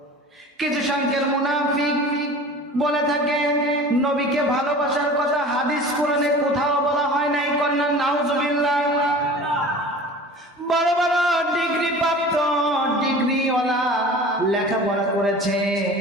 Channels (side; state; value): both; normal; correlation 0.40